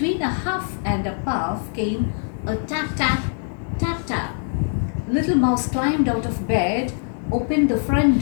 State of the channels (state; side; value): silent; right; 60 dB below the other